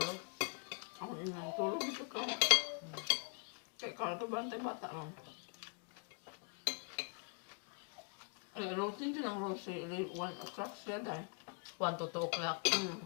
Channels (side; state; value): right; quieter; 39.1 dB